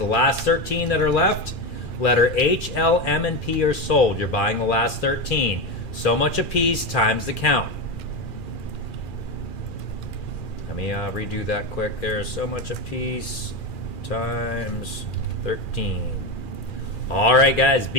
last 13 that are left, letter H, L, M, and P are sold. You're buying the last 13. So much a piece times the count. Let me redo that quick there. So much a piece times 13. All right, guys,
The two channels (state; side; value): late; right; 2.4 ms